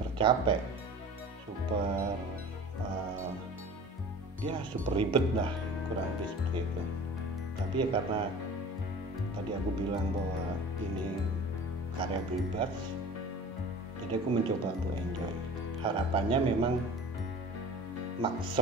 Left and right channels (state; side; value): normal; both; correlation 0.40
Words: capek, super super ribet lah, kurang lebih seperti itu. Tapi ya karena tadi aku bilang bahwa ini karya bebas, jadi aku mencoba untuk enjoy. Harapannya memang